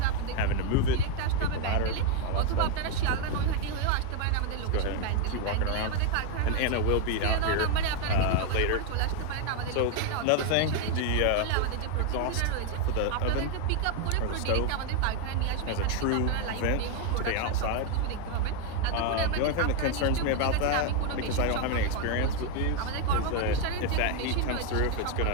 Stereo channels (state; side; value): different; both; correlation 0.01